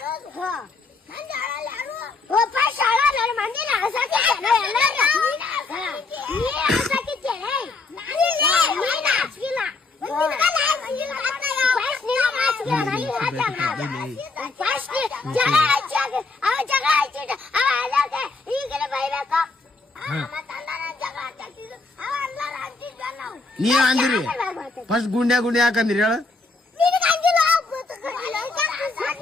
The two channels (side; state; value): right; quieter; 3.7 dB